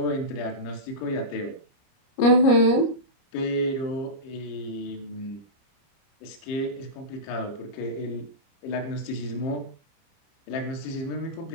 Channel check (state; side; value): late; right; 30 ms